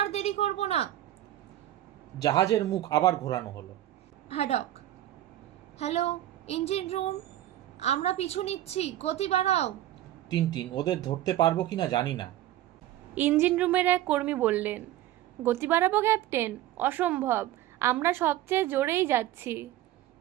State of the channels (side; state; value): left; quieter; 13.7 dB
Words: দেরি করব না। জাহাজের মুখ আবার ঘোরানো হলো। হ্যাডক, হ্যালো, ইঞ্জিন রুম, আমরা পিছু নিচ্ছি, গতি বাড়াও। টিনটিন, ওদের ধরতে পারবো কিনা জানি না। ইঞ্জিন রুমের এক কর্মী বললেন, গতি বাড়াবো ক্যাপ্টেন? অসম্ভব, আমরা সবচেয়ে জোরেই যাচ্ছি।